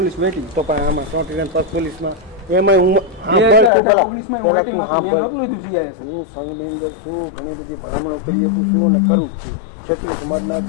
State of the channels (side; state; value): right; drops out; at 3.7 s